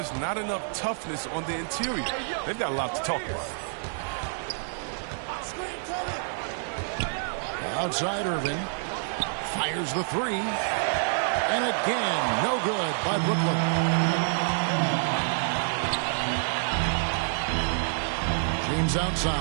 not enough toughness on the interior. They've got a lot to talk about. Outside Irving. Fires the 3. And again, no good by Brooklyn. James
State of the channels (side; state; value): left; silent; 60 dB below the other